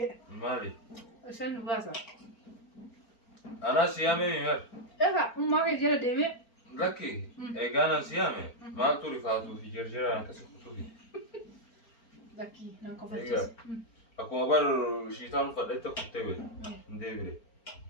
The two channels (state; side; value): late; right; 4.4 ms